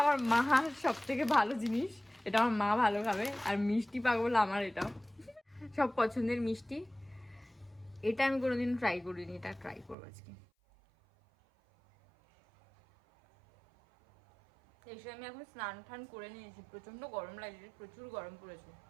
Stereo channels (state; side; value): drops out; left; at 10.0 s